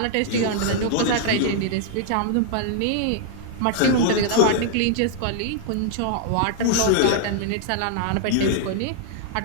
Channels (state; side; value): different; both; correlation -0.01